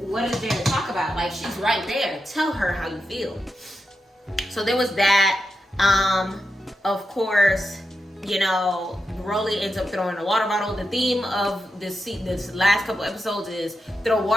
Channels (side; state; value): both; normal; correlation 0.88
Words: is there to talk about? Like, she's right there. Tell her how you feel. So there was that. Of course, you know, Rolly ends up throwing a water bottle. The theme of this last couple episodes is throw